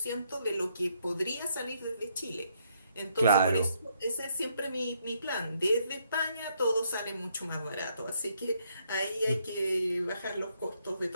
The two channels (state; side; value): inverted; both; correlation -0.73